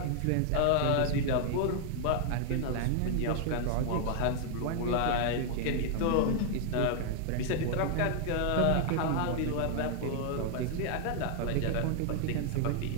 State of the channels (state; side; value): different; both; correlation 0.00